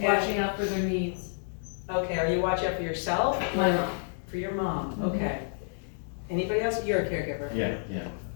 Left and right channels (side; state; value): right; silent; digital silence